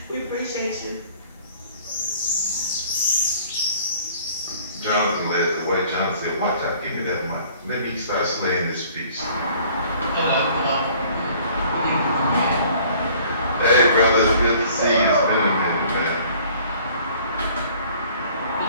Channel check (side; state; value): both; inverted; correlation -0.54